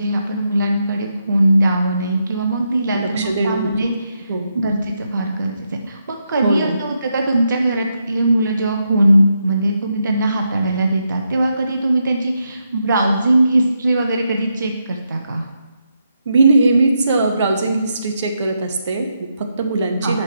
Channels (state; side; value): inverted; both; correlation -0.82